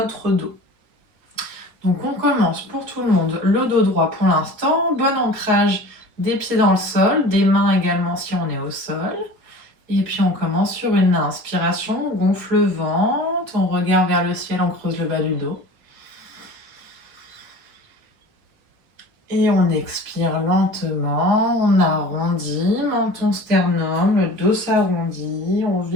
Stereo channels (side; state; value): left; late; 4.8 ms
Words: dos. Donc on commence pour tout le monde le dos droit pour l'instant, bon ancrage des pieds dans le sol, des mains également si on est au sol. Et puis on commence sur une inspiration, on gonfle le ventre, on regarde vers le ciel, on creuse le bas du dos. Et on expire lentement, on arrondit, menton sternum, le dos s'arrondit, on